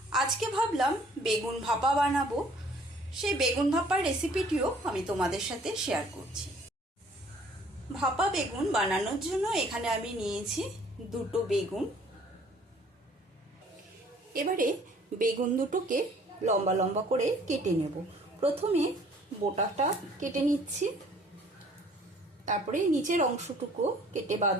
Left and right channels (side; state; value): both; normal; correlation 0.56